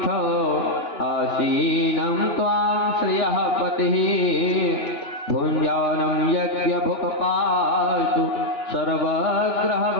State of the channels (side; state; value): right; late; 3.4 ms